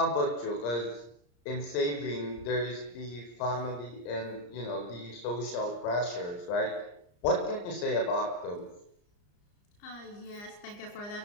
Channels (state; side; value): late; right; 34 ms